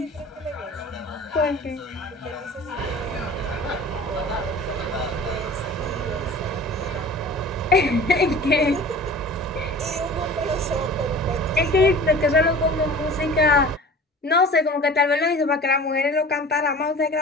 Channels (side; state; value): both; normal; correlation 0.41